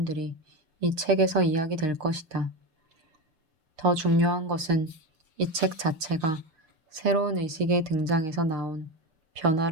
이 책에서 이야기될 것이다. 더 중요한 것은 이 책 자체가 새로운 의식의 등장에서 나온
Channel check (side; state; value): left; late; 6.5 ms